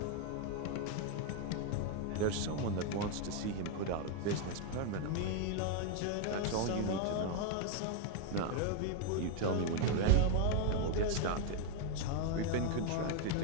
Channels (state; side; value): different; both; correlation 0.01